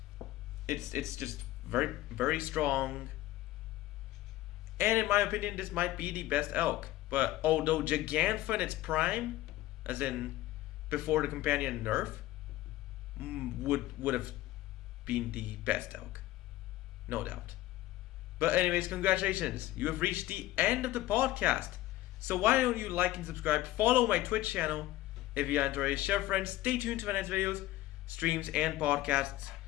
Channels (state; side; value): quieter; right; 16.1 dB